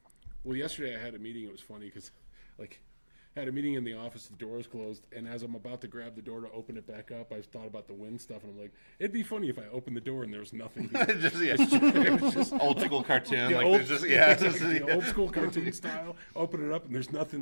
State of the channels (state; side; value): inverted; both; correlation -1.00